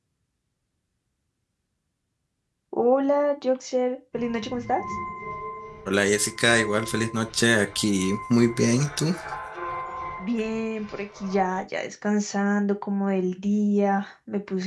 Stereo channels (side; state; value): both; identical; correlation 1.00